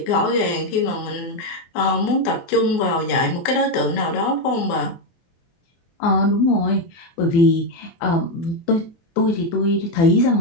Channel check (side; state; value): right; late; 24 ms